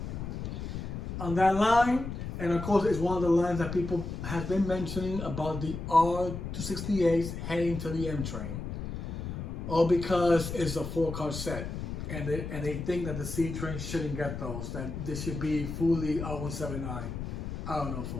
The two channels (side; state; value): left; noise; rumble, 6 dB below the sound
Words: on that line. And of course, it's one of the lines that people have been mentioning about the R268s heading to the M train. All because it's a 4-car set. and they think that the C train shouldn't get those, that they should be fully R179. I don't know,